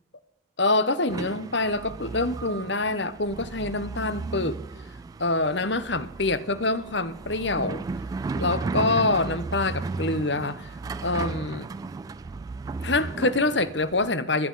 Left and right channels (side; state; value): both; normal; correlation -0.11